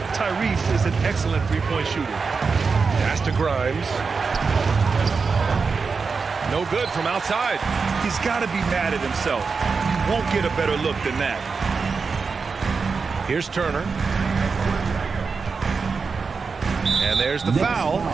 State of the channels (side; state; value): left; quieter; 4.9 dB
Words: Tyrese is an excellent three-point shooter. Pass to Grimes. No good from outside. He's got to be mad at himself. You won't get a better look than that. Here's Turner. And there's the foul.